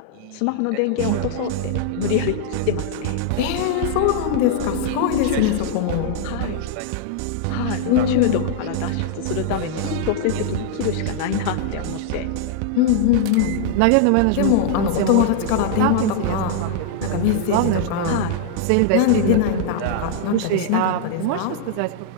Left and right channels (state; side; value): different; both; correlation -0.01